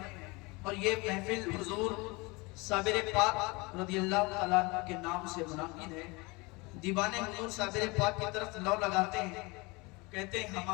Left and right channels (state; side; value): quieter; right; 25.7 dB